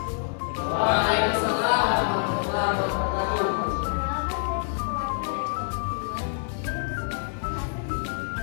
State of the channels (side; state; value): right; silent; digital silence